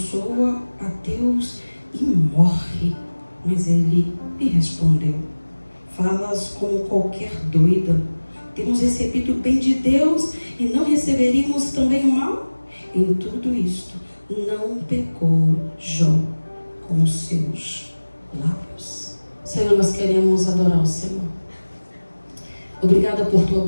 a Deus e morre. Mas ele lhe respondeu: falas como qualquer doida. Temos recebido o bem de Deus e não receberíamos também o mal? Em tudo isto não pecou Jó com os seus lábios. Senhor, nós queremos adorar o Senhor. Obrigada por tua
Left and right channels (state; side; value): inverted; both; correlation -1.00